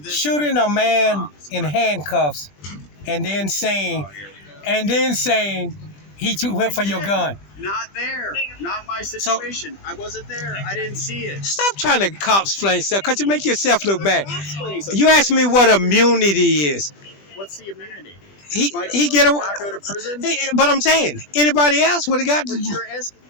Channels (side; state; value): right; late; 20 ms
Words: Shooting a man in handcuffs, and then saying he went for your gun. Not there. Not my situation. I wasn't there. I didn't see it. Stop trying to cop-explain stuff, because you make yourself look bad. You asked me what immunity is. What's the immunity? He get away. Not go to prison? But I'm saying, anybody else would have got. But you're asking.